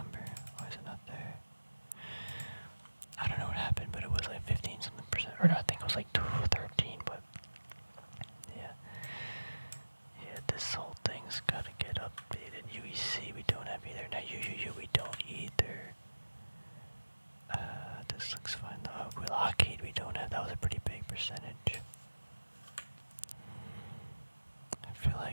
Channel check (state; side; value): inverted; both; correlation -1.00